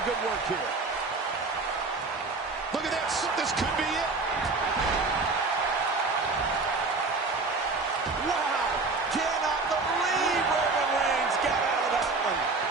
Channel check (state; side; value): quieter; left; 3.8 dB